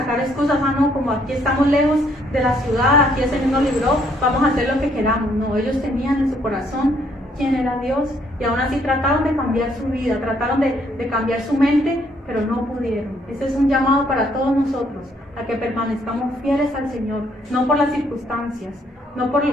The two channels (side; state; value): both; normal; correlation 0.68